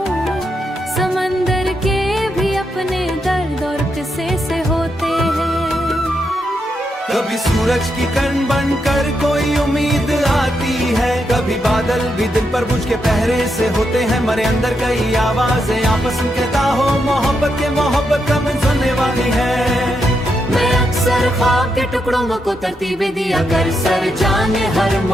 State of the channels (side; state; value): both; normal; correlation 0.82